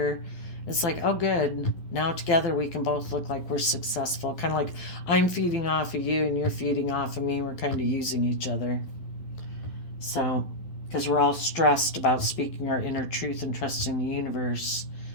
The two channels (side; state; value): right; late; 12 ms